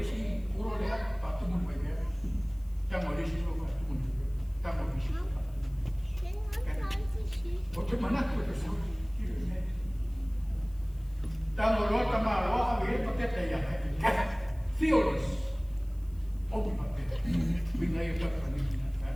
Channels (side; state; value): left; noise; hiss, 28 dB below the sound